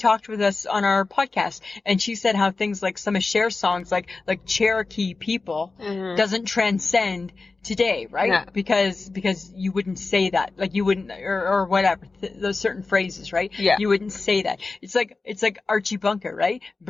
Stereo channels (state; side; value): quieter; right; 3.8 dB